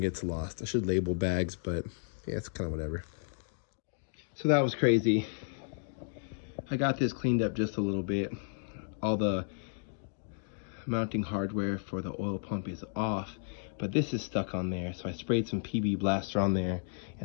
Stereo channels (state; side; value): silent; right; 56 dB below the other